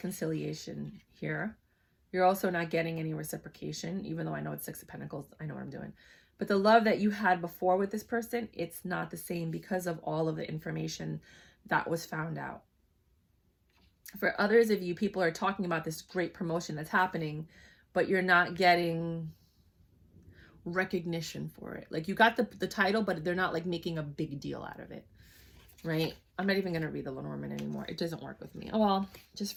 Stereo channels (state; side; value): identical; both; correlation 1.00